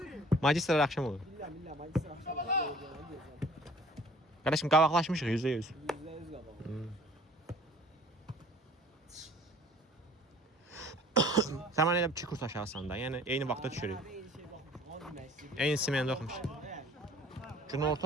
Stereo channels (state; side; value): normal; both; correlation 0.51